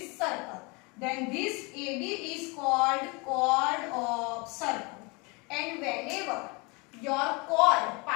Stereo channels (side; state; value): right; quieter; 28.3 dB